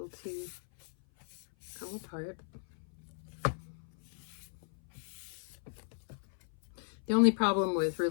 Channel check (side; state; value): right; silent; 54 dB below the other